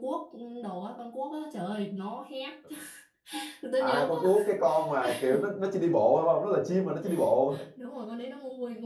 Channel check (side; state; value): both; identical; correlation 1.00